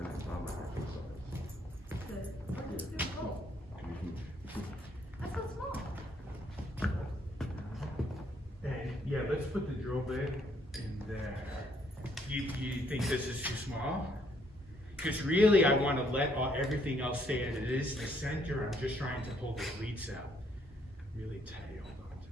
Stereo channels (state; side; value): normal; both; correlation 0.68